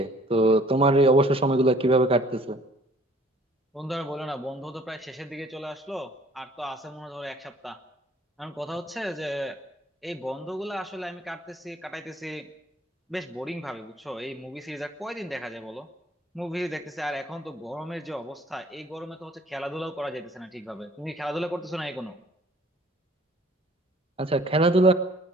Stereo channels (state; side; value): normal; both; correlation 0.56